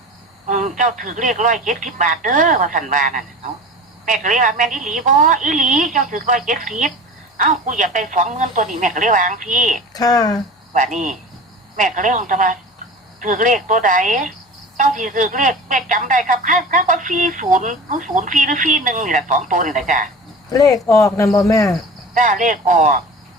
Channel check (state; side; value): normal; both; correlation 0.36